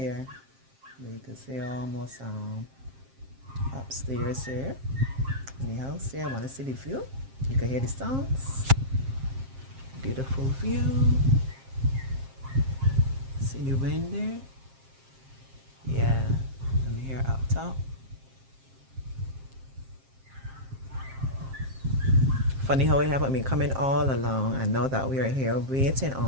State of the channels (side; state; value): left; late; 7.5 ms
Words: You can see almost upstairs here in the house here. I want to see the view. You can hear the sounds. Beautiful view. See the wind there? Yeah, I'm here up top. Funny how it happened me coming all along and now that we are here waiting